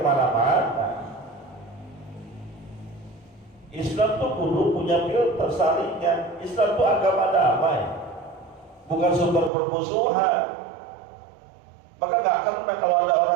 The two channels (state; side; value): drops out; left; at 9.5 s